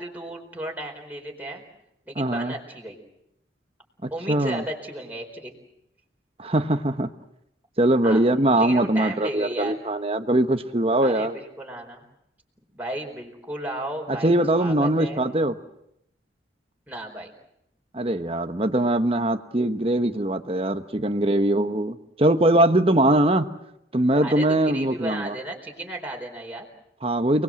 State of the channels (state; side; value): normal; both; correlation 0.54